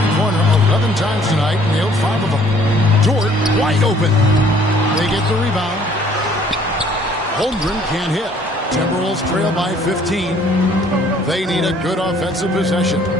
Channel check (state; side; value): normal; both; correlation 0.59